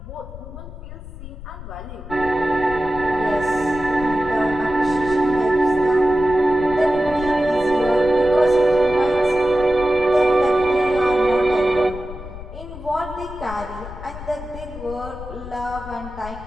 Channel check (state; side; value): noise; left; rumble, 13 dB below the sound